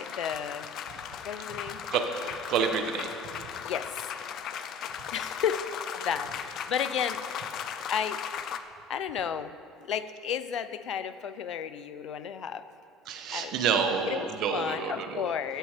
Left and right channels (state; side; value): normal; both; correlation 0.40